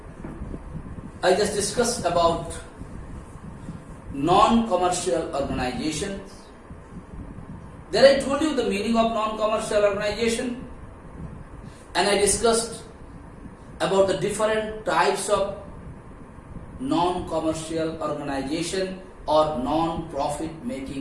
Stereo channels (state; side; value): identical; both; correlation 1.00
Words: I just discussed about non-commercial organizations. There I told you the meaning of non-commercial organization, and I discussed about the different types of non-commercial organization or non-profit